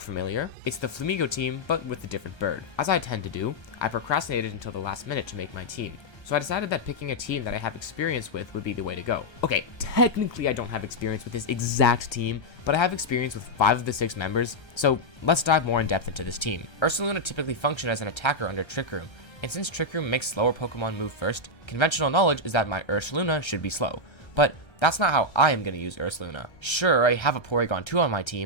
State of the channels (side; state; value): right; late; 1.3 ms